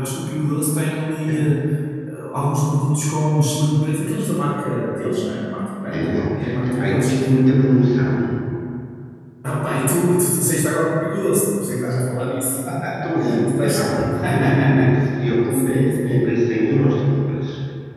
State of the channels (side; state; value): both; identical; correlation 1.00